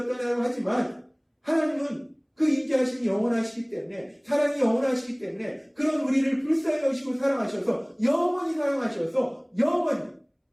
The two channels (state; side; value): identical; both; correlation 1.00